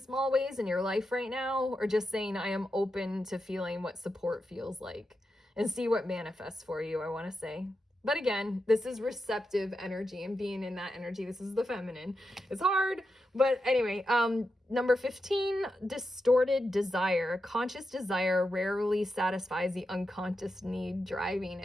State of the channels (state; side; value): normal; both; correlation 0.88